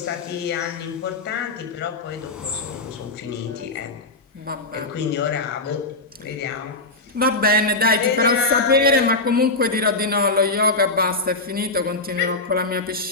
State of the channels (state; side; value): quieter; right; 3.2 dB